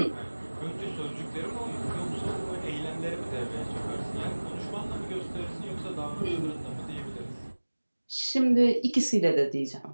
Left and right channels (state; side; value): inverted; both; correlation -1.00